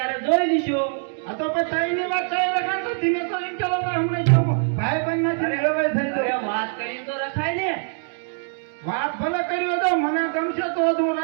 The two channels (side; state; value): left; silent; 63 dB below the other